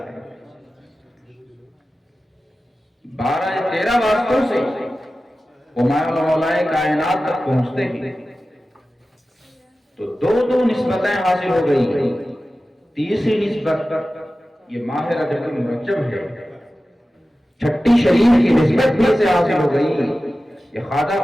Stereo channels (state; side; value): normal; both; correlation 0.95